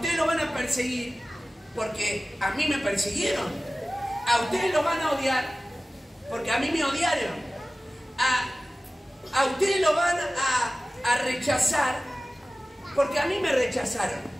lo van a perseguir porque a mí me persiguieron. A ustedes lo van a odiar porque a mí me odiaron. A ustedes lo van a rechazar porque a mí me rechazaron.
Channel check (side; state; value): both; normal; correlation 0.96